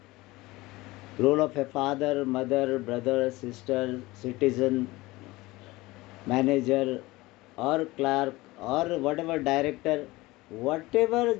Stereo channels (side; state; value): right; quieter; 20.3 dB